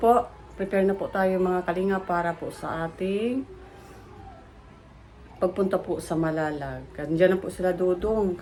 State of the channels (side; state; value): both; identical; correlation 1.00